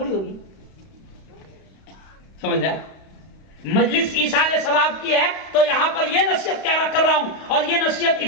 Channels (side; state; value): right; late; 32 ms